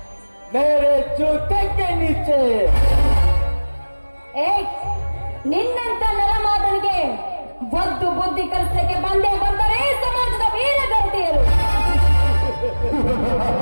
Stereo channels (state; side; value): inverted; both; correlation -1.00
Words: ಮೇರೆ ಜೂತಕ್ಕೆ ನೀಚೆ. ಏ, ನಿನ್ನಂತ ನರಮಾದನಿಗೆ ಒದ್ದು ಬುದ್ಧಿ ಕಲಿಸಲಿಕ್ಕೆ ಬಂದೇ ಬಂದರೆ ಸಮಾಜದ ವೀರಗತಿಯರು.